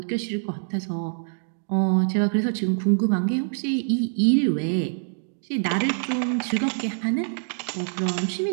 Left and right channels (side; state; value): left; silent; digital silence